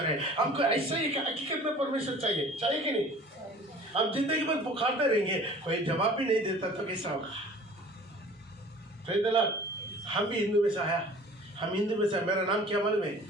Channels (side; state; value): both; normal; correlation 0.46